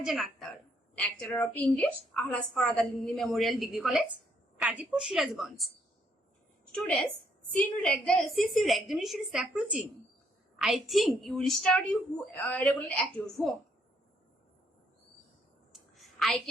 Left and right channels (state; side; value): normal; both; correlation 0.71